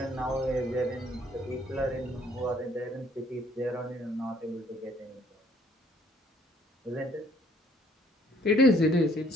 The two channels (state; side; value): normal; both; correlation 0.62